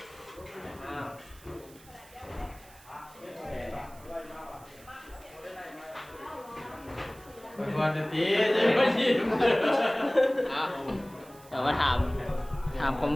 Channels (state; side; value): noise; right; hiss, 23 dB below the sound